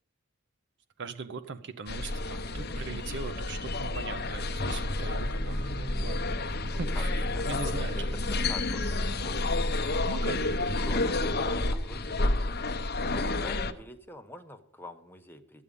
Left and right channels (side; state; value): both; normal; correlation 0.48